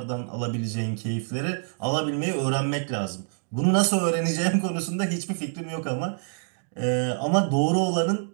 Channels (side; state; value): left; silent; 61 dB below the other